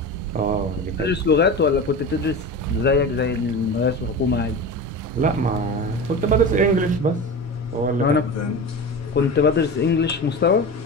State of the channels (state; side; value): normal; both; correlation 0.28